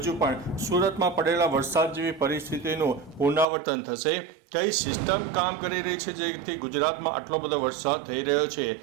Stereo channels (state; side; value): drops out; left; at 3.5 s